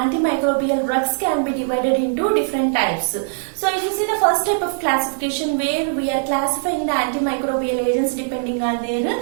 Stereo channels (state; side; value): silent; left; 55 dB below the other